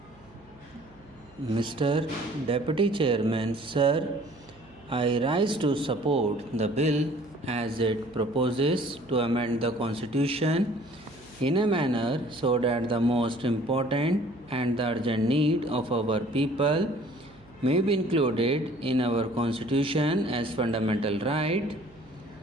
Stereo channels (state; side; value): noise; right; hum, 27 dB below the sound